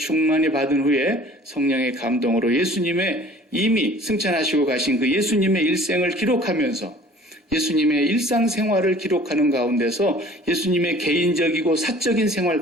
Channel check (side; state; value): both; normal; correlation 0.49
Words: 받은 후에 성령의 감동으로 예수님의 이미 승천하시고 가신 그 예수님의 일생을 기록하면서 예수님의 일상생활을 기록하는 가운데서 예수님의 개인적이고 사적인